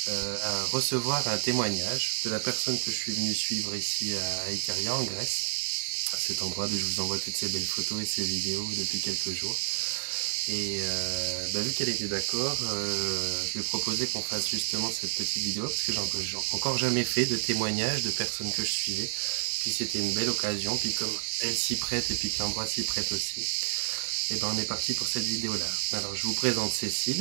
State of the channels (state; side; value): silent; left; digital silence